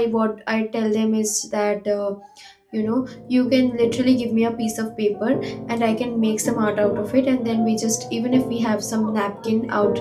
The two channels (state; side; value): identical; both; correlation 1.00